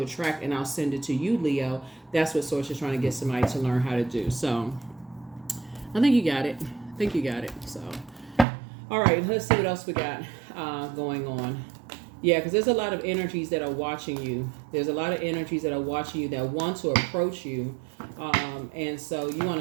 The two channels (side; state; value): left; drops out; at 8.5 s